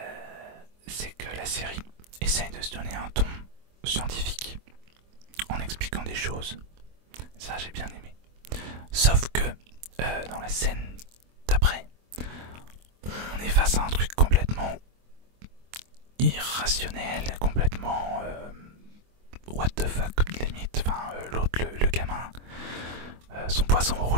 c'est que la série essaye de se donner un ton scientifique en expliquant des choses. Ça j'ai bien aimé. Sauf que dans la scène d'après, on est face à un truc complètement irrationnel, complètement what the fuck limite. Enfin, l'autre, le gamin, son poisson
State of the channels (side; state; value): left; late; 24 ms